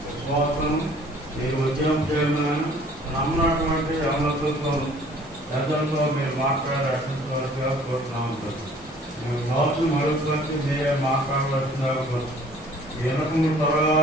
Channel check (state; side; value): normal; both; correlation 0.54